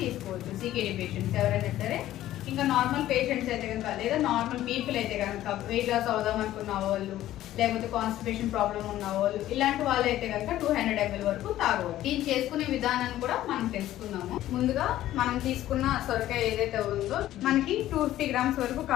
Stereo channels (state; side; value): quieter; right; 13.8 dB